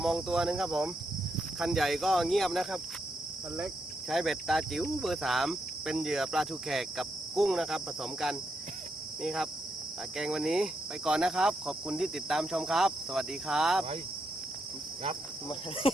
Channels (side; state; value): both; normal; correlation 0.81